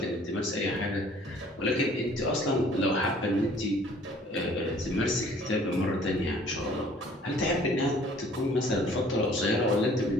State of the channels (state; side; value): normal; both; correlation 0.55